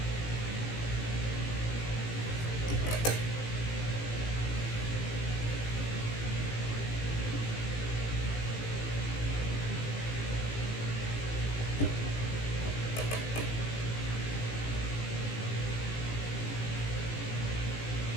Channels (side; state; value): right; late; 18 ms